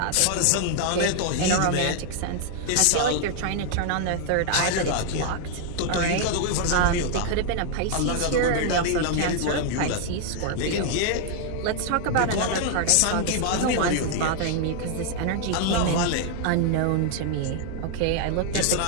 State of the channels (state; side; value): different; both; correlation 0.00